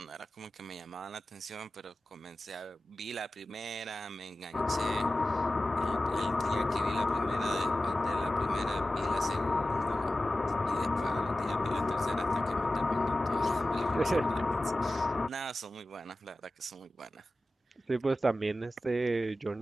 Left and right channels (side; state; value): both; normal; correlation 0.95